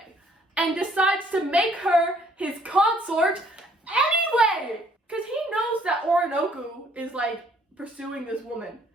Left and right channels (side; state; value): both; normal; correlation 0.63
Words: And decides to make her his consort anyway. Because he knows that Oroonoko is like pursuing this woman.